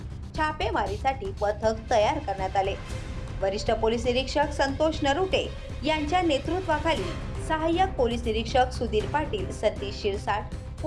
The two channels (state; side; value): identical; both; correlation 1.00